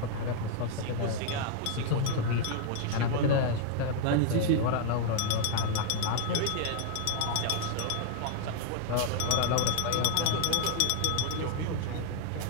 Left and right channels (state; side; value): different; both; correlation 0.00